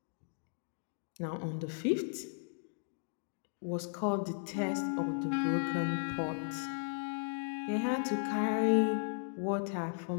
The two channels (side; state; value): right; silent; digital silence